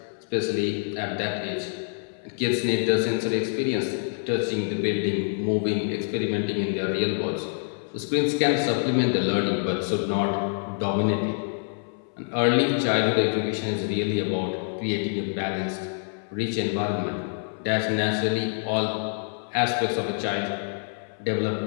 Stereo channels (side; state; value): right; silent; 61 dB below the other